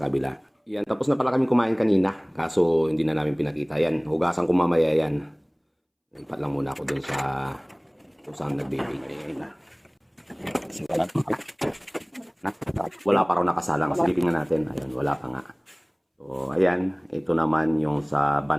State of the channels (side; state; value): both; identical; correlation 1.00